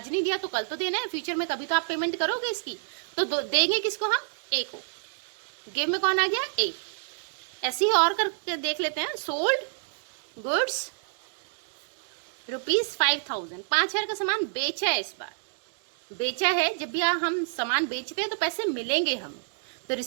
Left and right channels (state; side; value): silent; left; digital silence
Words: नहीं दिया तो कल तो देना है, फ्यूचर में कभी तो आप पेमेंट करोगे इसकी। तो देंगे किसको? हम ए को। गिव में कौन आ गया? ए। ऐसे ही और करके देख लेते हैं। सोल्ड गुड्स ₹5,000, 5,000 का सामान बेचा है। इस बार बेचा है, जब भी हम सामान बेचते हैं तो पैसे मिलेंगे हमें। तो